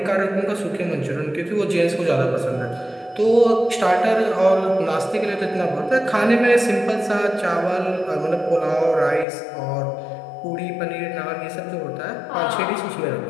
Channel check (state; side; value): drops out; right; at 9.2 s